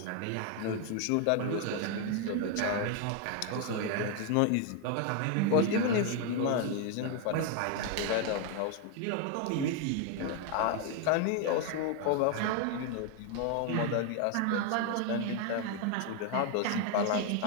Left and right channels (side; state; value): both; different; correlation 0.01